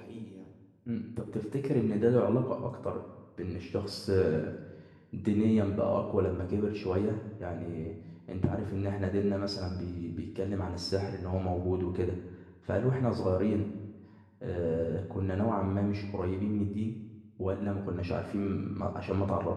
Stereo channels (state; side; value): identical; both; correlation 1.00